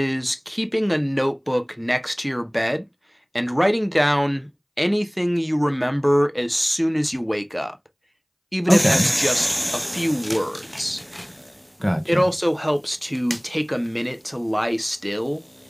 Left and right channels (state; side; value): identical; both; correlation 1.00